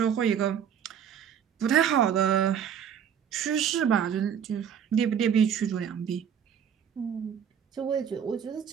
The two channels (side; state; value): left; quieter; 8.3 dB